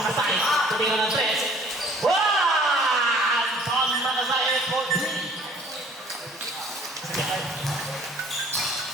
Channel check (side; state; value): both; normal; correlation 0.54